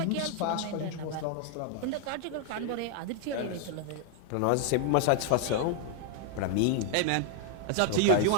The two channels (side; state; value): both; different; correlation 0.00